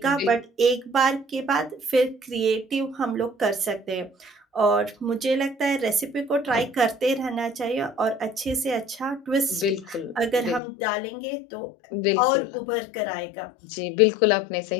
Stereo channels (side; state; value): right; drops out; at 10.6 s